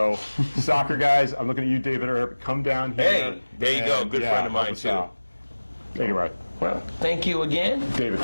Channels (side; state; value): both; inverted; correlation -1.00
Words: soccer guys, I'm looking at you, David, or come down here. Hey, there you go. Good friend of mine, too. Anyway. Well, thank you again. David,